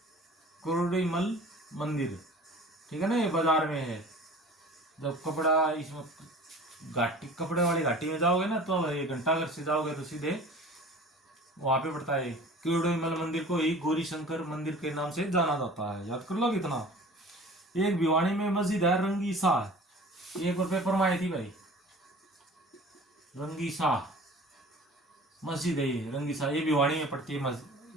किरोड़ीमल मंदिर, ठीक है ना, ये बाजार में है। जब कपड़ा इसमें घाटी, कपड़े वाली घाटी में जाओगे ना, तो 1 घंटा घर से जाओगे तो सीधे वहां पे पड़ता है किरोड़ीमल मंदिर को ही गौरी शंकर मंदिर के नाम से जाना जाता है। याद कर लो कितना। एक भिवानी में मस्जिद है रंगी शाह, एक और पेपर में आई थी भाई, रंगी शाह मस्जिद है ये, रंगी शाह, ये भिवानी में पड़ती है मस्जिद,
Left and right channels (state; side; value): normal; both; correlation 0.43